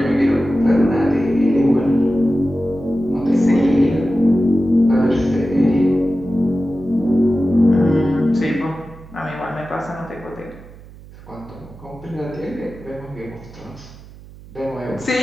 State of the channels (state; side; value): noise; right; hum, 20 dB below the sound